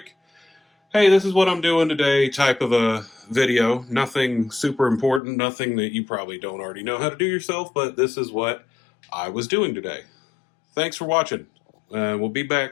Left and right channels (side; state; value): right; drops out; at 5.2 s